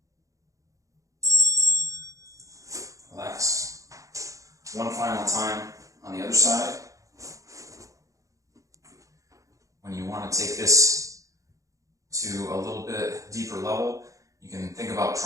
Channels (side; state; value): left; late; 0.16 ms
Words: Relax. One final time on the other side. When you want to take this to a little bit deeper level, you can think about